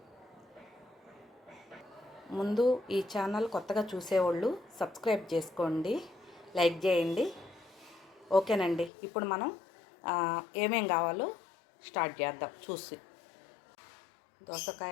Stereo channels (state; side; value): drops out; right; at 8.9 s